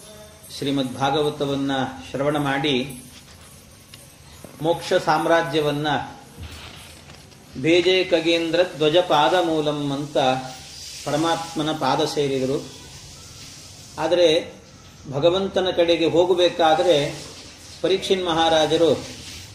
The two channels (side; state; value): both; identical; correlation 1.00